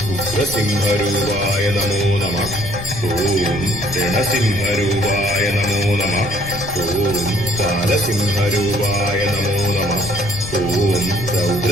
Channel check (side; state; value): left; noise; rumble, 10 dB below the sound